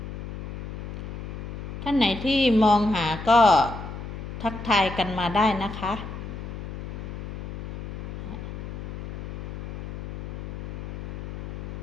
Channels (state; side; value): noise; left; hum, 7 dB below the sound